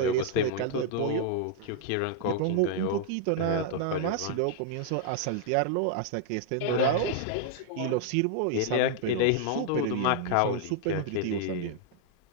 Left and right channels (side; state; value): both; different; correlation 0.00